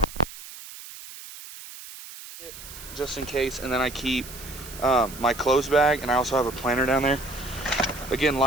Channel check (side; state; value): right; noise; hiss, 14 dB below the sound